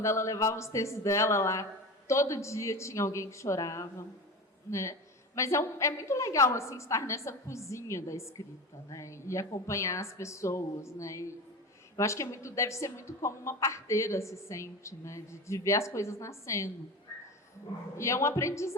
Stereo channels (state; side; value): normal; both; correlation 0.28